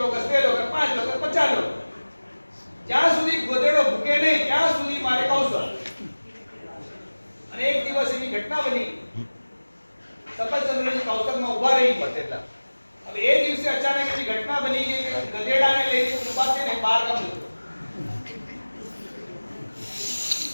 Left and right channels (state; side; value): inverted; both; correlation -1.00